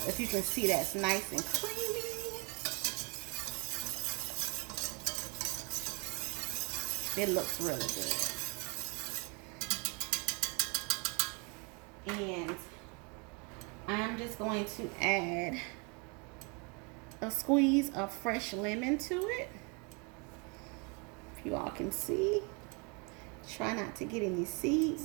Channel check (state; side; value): quieter; left; 33.0 dB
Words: if you can see, that's nice and creamy. It looks really good. And I'm just going to add a squeeze of fresh lemon to it. If you all can see. Try not to get any seeds